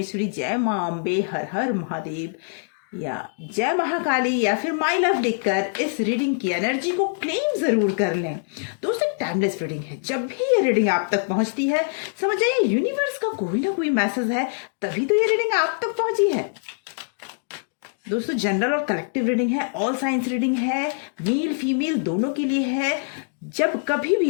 जय मां अम्बे, हर हर महादेव या जय महाकाली या फिर माई लव लिखकर इस रीडिंग की एनर्जी को क्लेम जरूर कर लें। दोस्तों, टाइमलेस रीडिंग है। जब भी ये रीडिंग आप तक पहुंचती है, समझ जाइए यूनिवर्स का कोई ना कोई मैसेज है, तभी तो ये रीडिंग आप तक पहुंची है। दोस्तों, जनरल और कलेक्टिव रीडिंग है, ऑल साइंस रीडिंग है, मेल फीमेल दोनों के लिए है। जब कभी भी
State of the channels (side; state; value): right; silent; digital silence